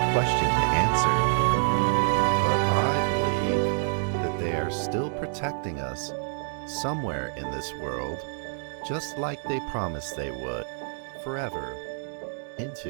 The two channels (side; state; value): left; silent; 60 dB below the other